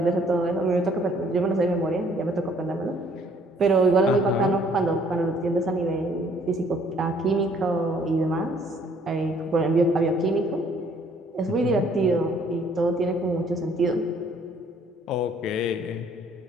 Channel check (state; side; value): normal; both; correlation 0.61